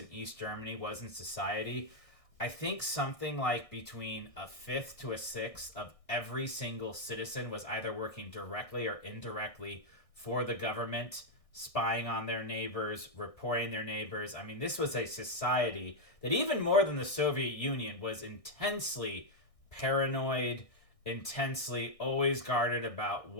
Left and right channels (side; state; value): right; late; 1.6 ms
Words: East Germany was in society. I think something like between a fifth to a sixth of every single citizen was either working directly or indirectly for the government, spying on their neighbors, reporting their neighbors. I mean, this was a society that even more than the Soviet Union was intensely paranoid, intensely always guarded about